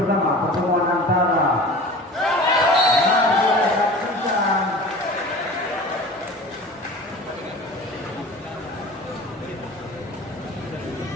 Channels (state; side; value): normal; both; correlation 0.38